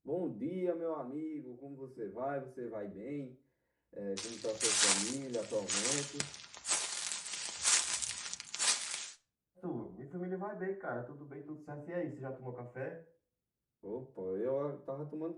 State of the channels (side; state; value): both; identical; correlation 1.00